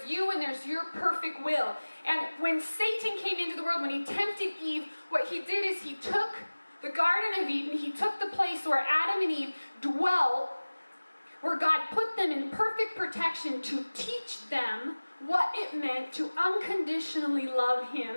you and there's your perfect will. And when Satan came into the world, when he tempted Eve, what he did is he took the Garden of Eden, he took the place where Adam and Eve dwelt, where God put them in perfect protection to teach them what it meant to unconditionally love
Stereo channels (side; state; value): both; inverted; correlation -1.00